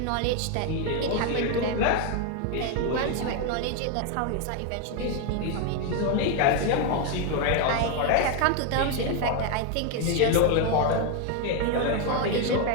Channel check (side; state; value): both; different; correlation 0.01